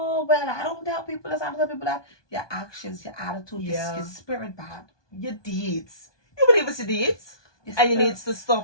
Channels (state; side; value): late; right; 1.2 ms